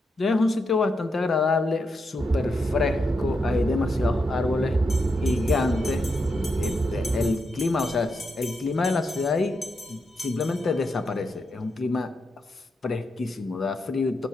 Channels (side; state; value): both; normal; correlation 0.83